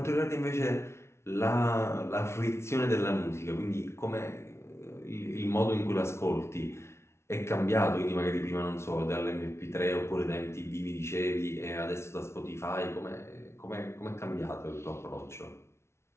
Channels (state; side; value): late; right; 0.13 ms